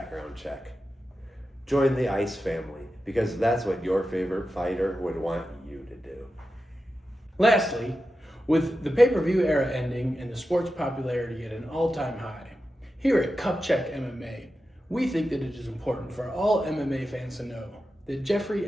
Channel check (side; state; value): both; normal; correlation 0.91